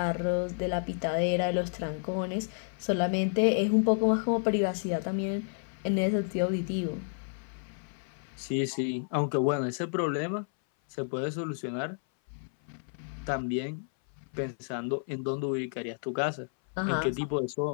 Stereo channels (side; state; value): right; silent; 57 dB below the other